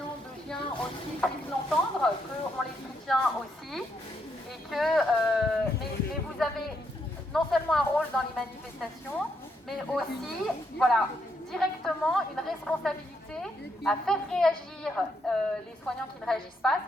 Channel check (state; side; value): normal; both; correlation 0.77